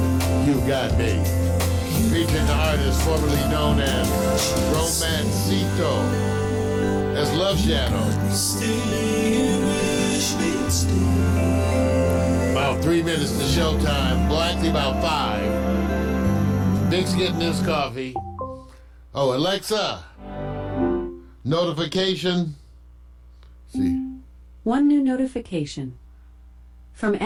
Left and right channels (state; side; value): identical; both; correlation 1.00